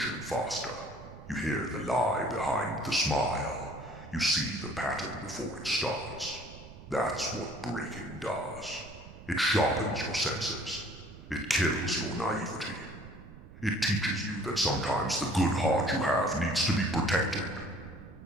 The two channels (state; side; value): noise; right; rumble, 17 dB below the sound